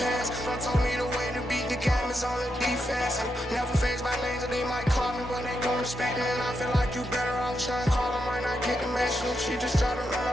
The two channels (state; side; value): normal; both; correlation 0.83